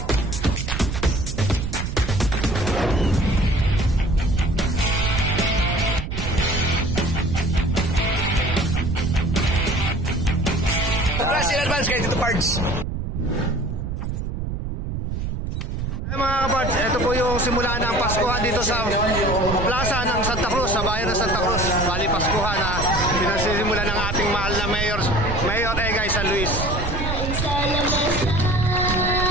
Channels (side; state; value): right; noise; rumble, 3 dB below the sound